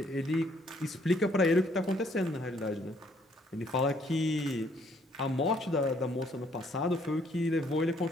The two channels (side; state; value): both; normal; correlation 0.65